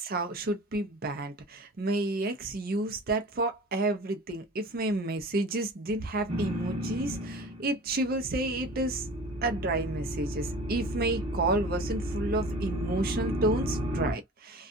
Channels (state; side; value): normal; both; correlation 0.40